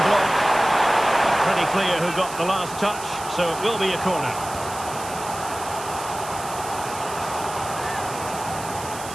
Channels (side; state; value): right; noise; hiss, 12 dB below the sound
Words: block. Pretty clear who got the last touch, so it will be a corner.